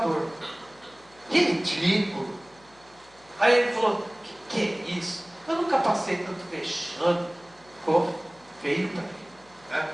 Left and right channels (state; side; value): noise; left; hum, 28 dB below the sound